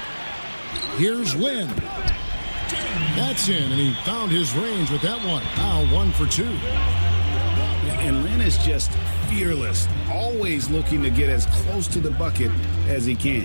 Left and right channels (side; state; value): both; inverted; correlation -1.00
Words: Here's Lynn. That's in, and he found his range with that one. Now 1 for 2. And Lynn is just fearless, always looking to get as close to the bucket as he can.